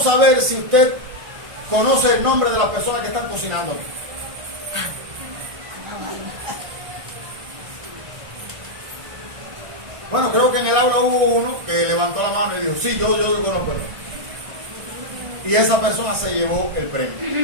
saber si usted conoce el nombre de las personas que están cocinando aquí. Bueno, creo que en el aula hubo uno que levantó la mano y dijo: sí, yo conozco el nombre. Y esa persona se llevó el premio.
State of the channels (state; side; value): late; left; 1.5 ms